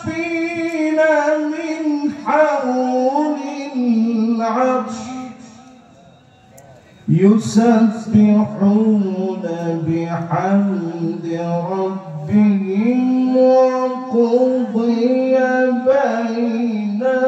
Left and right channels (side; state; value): both; identical; correlation 1.00